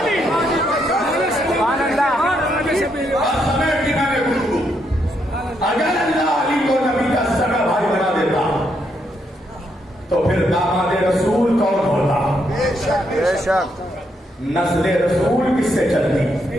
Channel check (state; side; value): normal; both; correlation 0.77